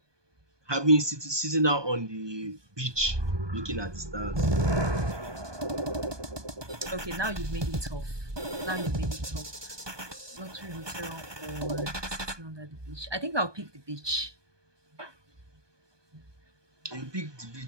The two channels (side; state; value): left; late; 1.2 ms